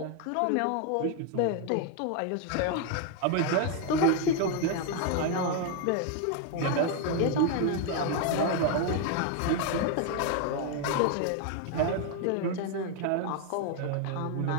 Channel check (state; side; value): different; both; correlation 0.01